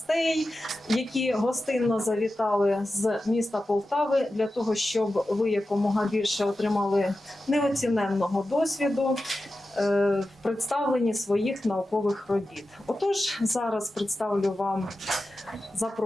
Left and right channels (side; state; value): both; normal; correlation 0.93